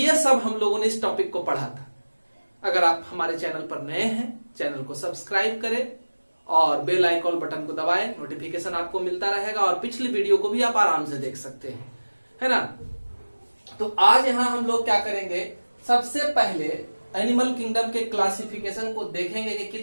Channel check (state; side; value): inverted; both; correlation -1.00